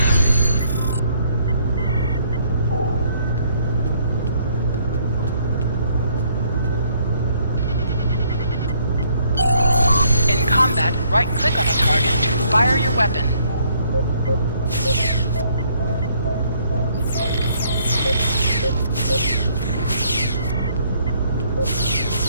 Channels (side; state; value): both; inverted; correlation -0.66